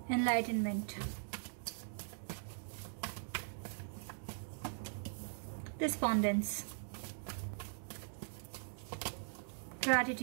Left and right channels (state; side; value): silent; left; digital silence